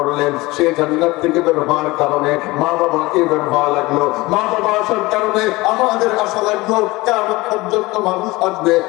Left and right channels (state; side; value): quieter; right; 21.2 dB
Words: সে জান্নাত থেকে বের হওয়ার কারণে মা বাবাকে বের হওয়া লাগলো। মা বাবা আসার কারণে আমাদের আসা লাগলো। কিয়ামত পর্যন্ত মানুষ আসবে।